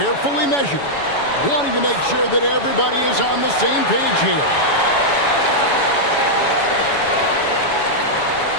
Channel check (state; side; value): late; right; 7.1 ms